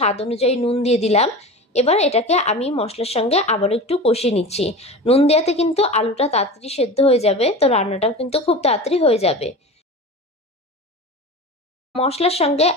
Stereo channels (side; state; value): both; normal; correlation 0.32